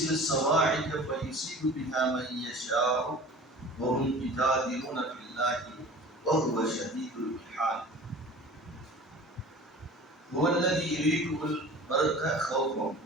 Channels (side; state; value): both; normal; correlation 0.42